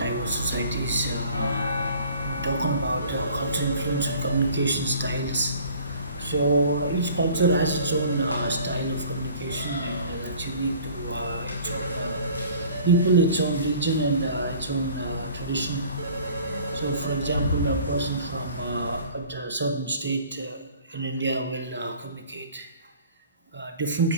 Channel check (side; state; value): both; inverted; correlation -0.50